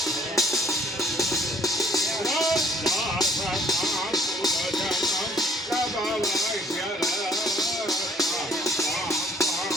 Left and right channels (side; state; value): both; normal; correlation 0.59